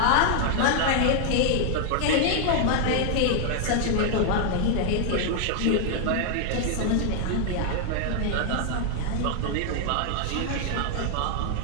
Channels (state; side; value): different; both; correlation 0.00